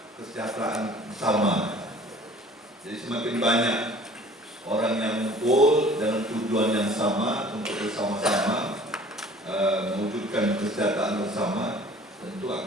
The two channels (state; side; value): normal; both; correlation 0.49